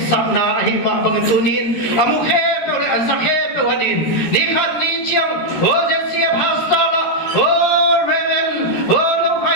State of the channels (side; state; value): right; late; 13 ms